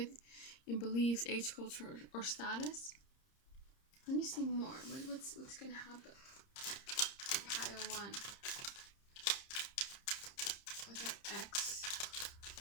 in beliefs, age, culture, or status. Let me see more. What's gonna happen? Pile 1 with their ex,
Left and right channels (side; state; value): right; late; 30 ms